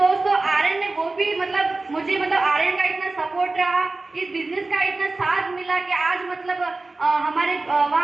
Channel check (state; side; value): quieter; left; 3.4 dB